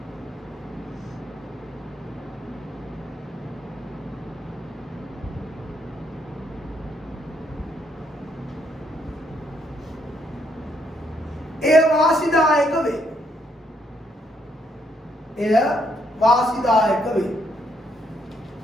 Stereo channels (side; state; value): both; normal; correlation 0.73